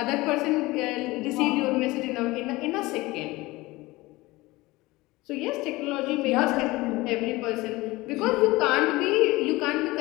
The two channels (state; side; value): quieter; right; 20.5 dB